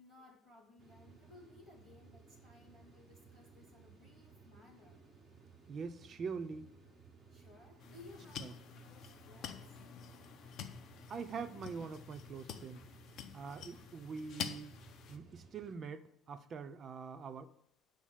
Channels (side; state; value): both; normal; correlation 0.63